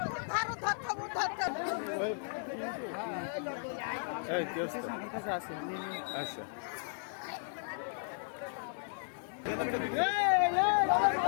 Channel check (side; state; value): right; silent; digital silence